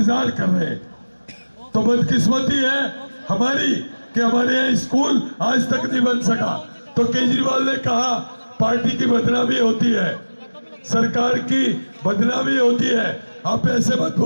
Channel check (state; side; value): inverted; both; correlation -1.00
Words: कर रहे हैं। तो बदकिस्मती है हमारी कि हमारे यहाँ स्कूल आज तक नहीं बन सका। तो केजरीवाल ने कहा पार्टी की बदनामी होती है, सरकार की बदनामी होती है, आप ऐसे मत